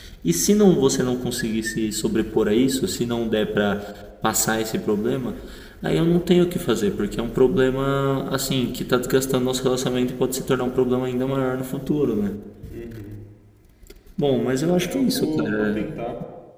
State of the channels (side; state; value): both; identical; correlation 1.00